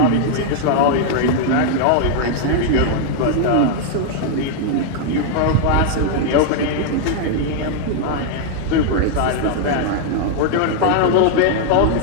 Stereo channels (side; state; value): both; different; correlation 0.00